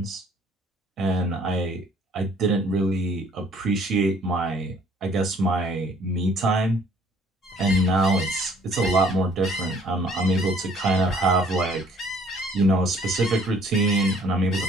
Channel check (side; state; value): both; normal; correlation 0.59